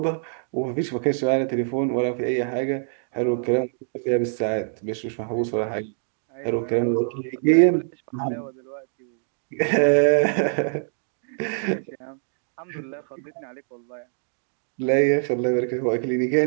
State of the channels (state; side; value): silent; left; digital silence